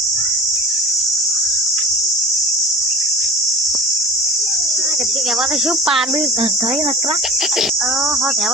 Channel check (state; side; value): normal; both; correlation 0.38